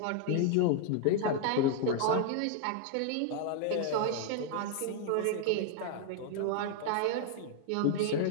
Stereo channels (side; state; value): both; different; correlation 0.00